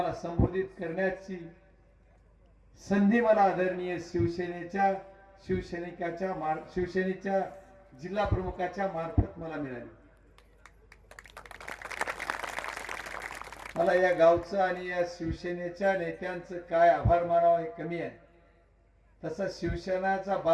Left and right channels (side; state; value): both; identical; correlation 1.00